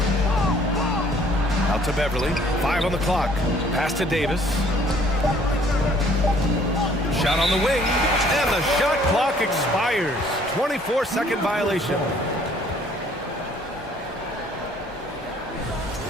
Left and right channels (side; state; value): both; normal; correlation 0.59